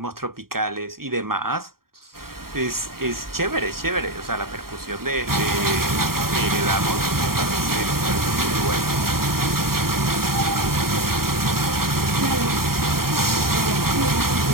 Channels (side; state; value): left; late; 0.93 ms